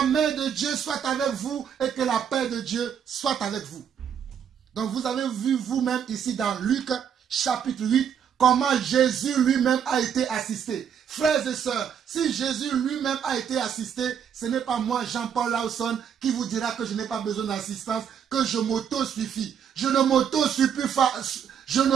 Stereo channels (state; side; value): quieter; left; 8.1 dB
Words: main de Dieu soit avec vous et que la paix de Dieu soit avec vous. Donc vous avez vu vous-même ici dans Luc chapitre 8 comment Jésus lui-même a été assisté. Frères et sœurs, si Jésus lui-même a été assisté, ce n'est pas moi, Jean-Paul Lawson, qui vous dira que je n'ai pas besoin d'assistance, que je m'auto-suffis. Je ne m'auto-suffis